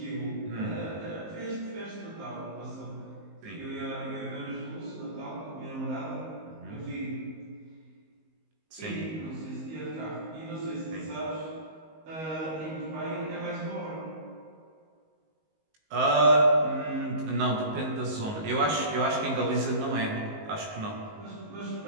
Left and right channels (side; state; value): left; late; 19 ms